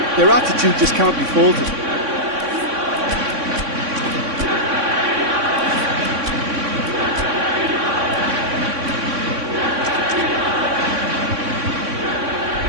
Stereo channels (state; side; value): late; left; 3.6 ms